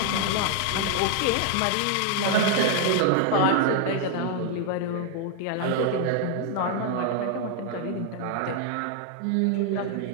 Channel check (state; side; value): different; both; correlation 0.00